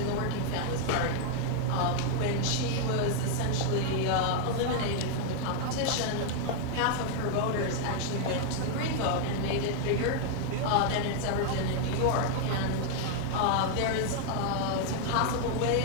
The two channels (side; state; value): both; different; correlation 0.00